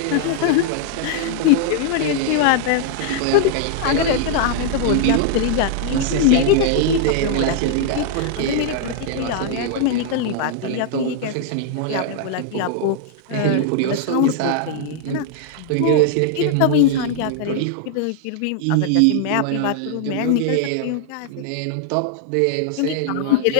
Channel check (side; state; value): both; different; correlation -0.01